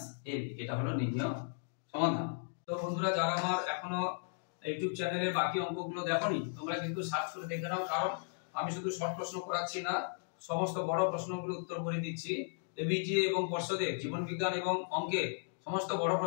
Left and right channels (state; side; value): silent; right; digital silence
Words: ab। এটা হলো নির্ণয় সমাধান। তো বন্ধুরা, যারা আমার এখনো ইউটিউব চ্যানেলে বাকি অঙ্কগুলো দেখোনি, তোমরা কিন্তু সার্চ করে দেখে নাও, কারণ আমি শুধু শর্ট প্রশ্ন করাচ্ছি না, সমস্ত বড় প্রশ্নগুলো উত্তর করে দিচ্ছি। এবিটি এবং পর্ষদের জীবন বিজ্ঞান এবং অঙ্কের সমস্ত বড়